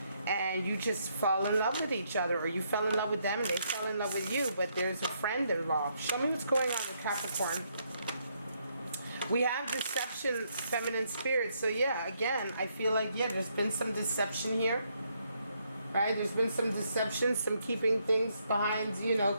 and you just fall in love with each other, or you fell in love with them and they fell in love with you, but there's a friend involved. Show me what's going on with Capricorn. We have deception, feminine spirit. So yeah, again, I feel like, yeah, there's been some deception here. Right? There's been some deception, some keeping things behind,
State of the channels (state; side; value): inverted; both; correlation -0.74